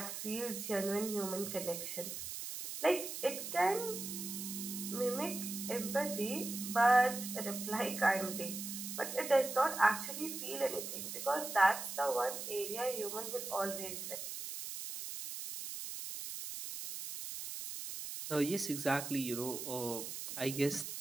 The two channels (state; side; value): noise; right; hiss, 6 dB below the sound